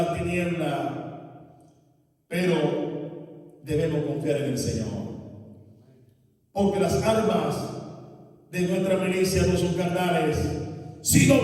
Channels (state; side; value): identical; both; correlation 1.00